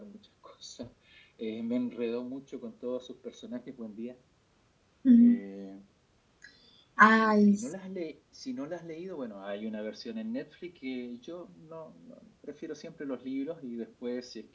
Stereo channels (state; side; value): identical; both; correlation 1.00